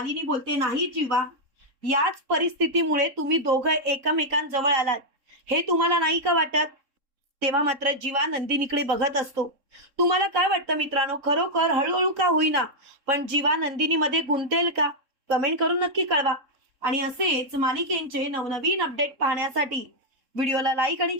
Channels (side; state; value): left; late; 3.7 ms